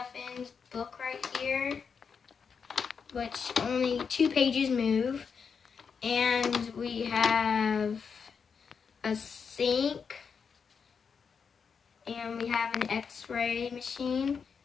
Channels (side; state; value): right; quieter; 6.1 dB